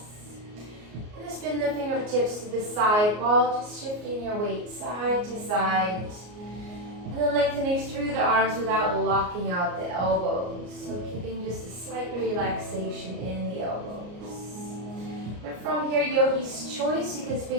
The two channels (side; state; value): left; late; 33 ms